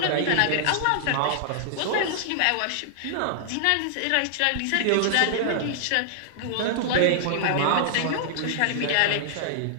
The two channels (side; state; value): both; different; correlation -0.01